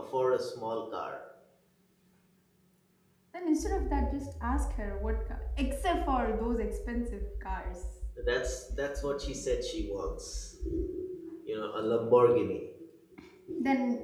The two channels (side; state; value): both; identical; correlation 1.00